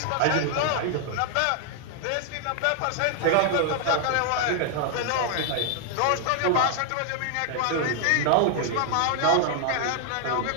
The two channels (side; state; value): both; different; correlation 0.00